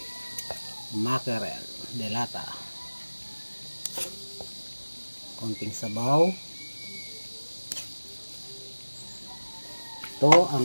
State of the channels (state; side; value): inverted; both; correlation -1.00